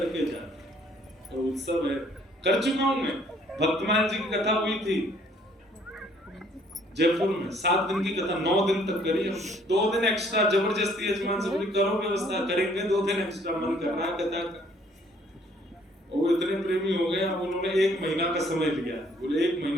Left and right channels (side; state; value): both; normal; correlation 0.62